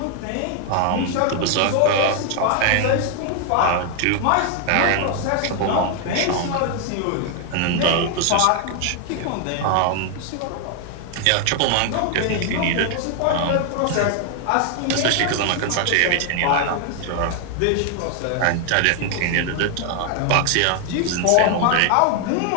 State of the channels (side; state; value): both; different; correlation 0.00